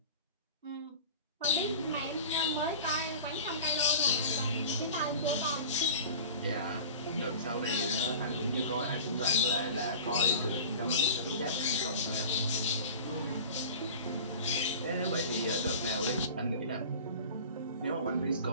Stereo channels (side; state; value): both; inverted; correlation -0.37